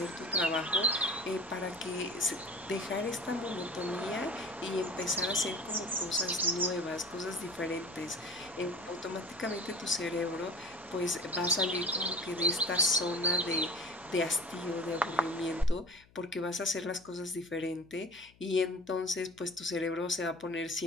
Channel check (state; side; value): noise; left; hum, 28 dB below the sound